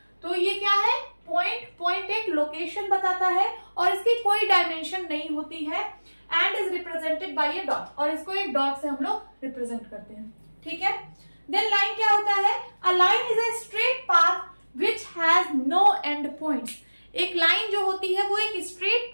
तो ये क्या है, पॉइंट एक लोकेशन बताता है और इसकी कोई डायमेंशन नहीं होती है and is represented by A dot, और इसको एक डॉट से हम लोग रिप्रेजेंट करते हैं, ठीक है। देन लाइन क्या होता है, a line is a straight path which has no end points. एक लाइन जो होती है वो एक स्ट्रेट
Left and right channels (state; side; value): inverted; both; correlation -1.00